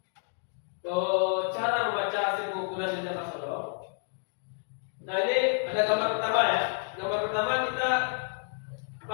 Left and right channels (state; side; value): silent; right; 58 dB below the other